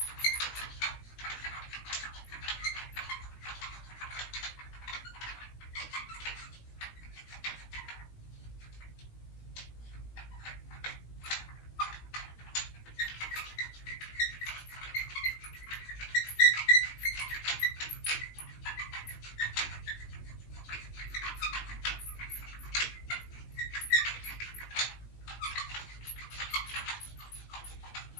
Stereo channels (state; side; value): late; right; 18 ms